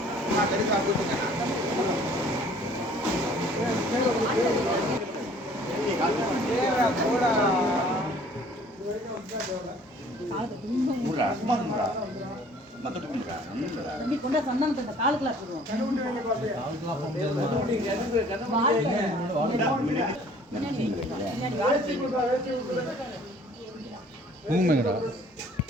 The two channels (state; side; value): normal; both; correlation 0.54